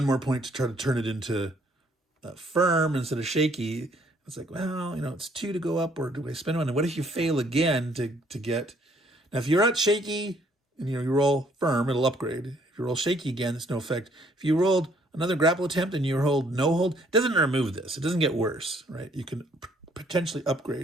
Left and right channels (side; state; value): both; normal; correlation 0.64